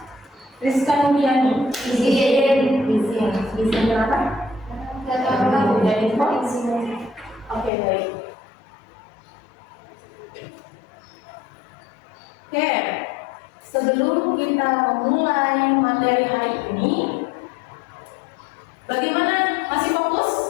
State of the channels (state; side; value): drops out; right; at 7.7 s